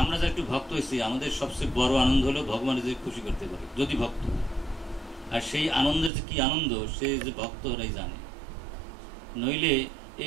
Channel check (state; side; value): drops out; left; at 6.1 s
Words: যারা একটু ভক্ত হয়েছি, আমাদের সবচেয়ে বড় আনন্দ হলো ভগবানের যে খুশি করতে পারে যদি ভক্ত। আর সেই আনন্দের যে কি আনন্দ, সে যে ভক্তরাই জানে। নইলে